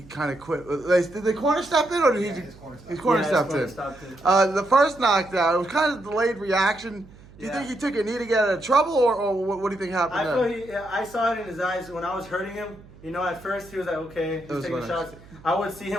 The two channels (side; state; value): right; noise; hum, 22 dB below the sound